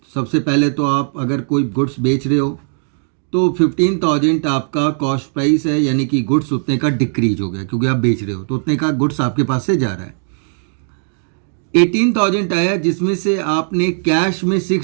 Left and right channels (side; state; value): left; silent; digital silence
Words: सबसे पहले तो आप अगर कोई गुड्स बेच रहे हो तो 15,000 आपका कॉस्ट प्राइस है, यानी कि गुड्स उतने का डिक्रीज हो गया क्योंकि आप बेच रहे हो तो उतने का गुड्स आपके पास से जा रहा है। 18,000 आया जिसमें से आपने कैश में